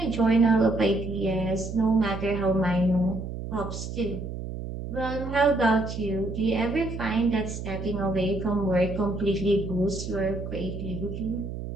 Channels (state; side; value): noise; right; hum, 7 dB below the sound